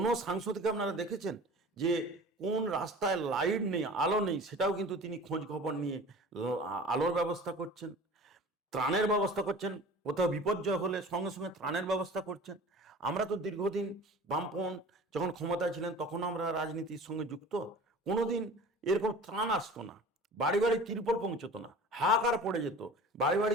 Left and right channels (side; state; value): both; normal; correlation 0.40